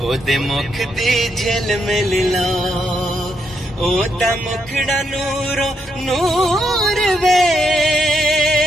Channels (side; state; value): both; normal; correlation 0.79